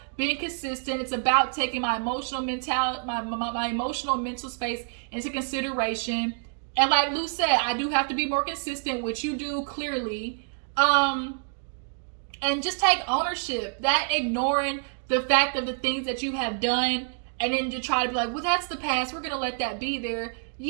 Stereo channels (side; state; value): left; silent; 60 dB below the other